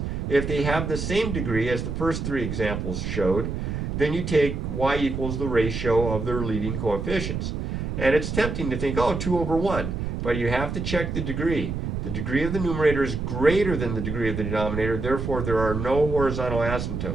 If they have the same degree as the first three examples showed, then you take y equals the ratio of their leading coefficients. And it's tempting to think, oh, 2 over 1. But you have to check the degree. The degree of the numerator is greater than the degree of the denominator. Therefore, there are no horizontal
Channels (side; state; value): right; noise; rumble, 3 dB below the sound